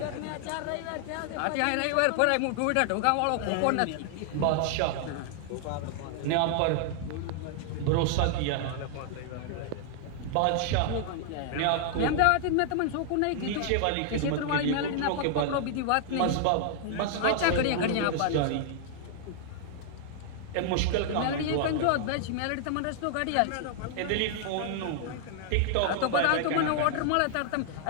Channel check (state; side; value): different; both; correlation -0.01